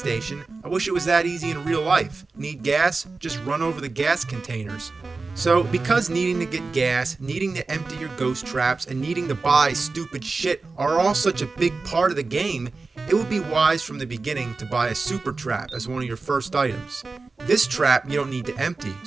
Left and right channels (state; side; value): quieter; left; 3.9 dB